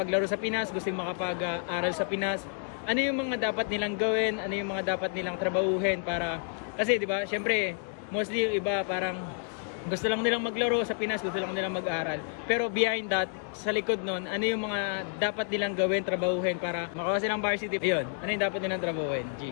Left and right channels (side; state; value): right; silent; 58 dB below the other